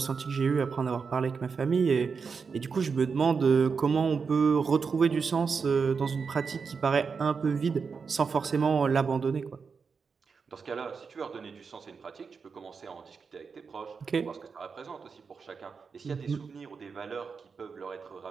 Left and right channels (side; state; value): left; quieter; 5.4 dB